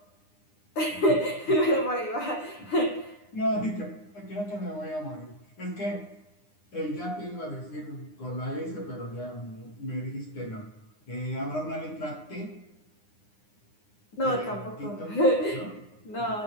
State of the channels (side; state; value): right; late; 9.8 ms